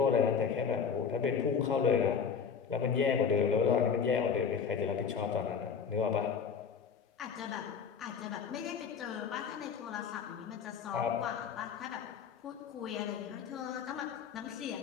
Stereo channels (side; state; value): right; quieter; 6.5 dB